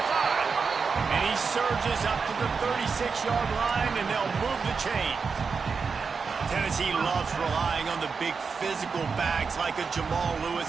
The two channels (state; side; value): quieter; left; 5.3 dB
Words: And he surges up to the 36-yard line, and they'll move the chains. Tennessee loves relying on the big physical backs like a Jamal